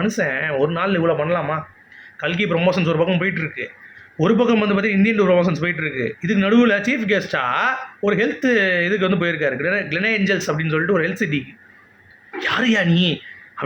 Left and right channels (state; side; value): identical; both; correlation 1.00